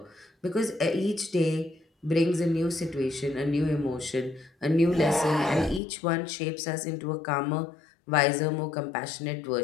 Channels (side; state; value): right; drops out; at 5.8 s